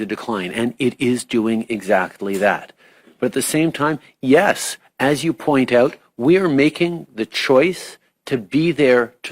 decline. And it is doing exactly that. But at the same time, yes, as you point out, we are making the choice to be there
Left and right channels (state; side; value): identical; both; correlation 1.00